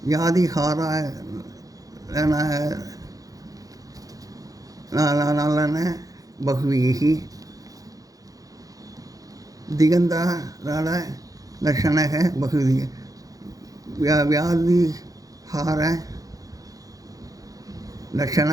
யாதிஹாரான பகுவிரீகி, திகந்தாரால லட்சணக பகுவிரீகி, வியாதிஹார லட்சண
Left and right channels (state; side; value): late; left; 0.17 ms